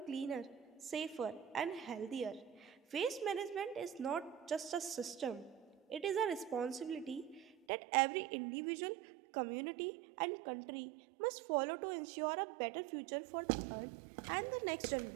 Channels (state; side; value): drops out; left; at 7.6 s